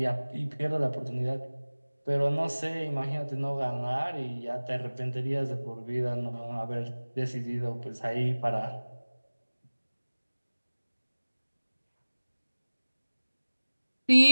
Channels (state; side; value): inverted; both; correlation -1.00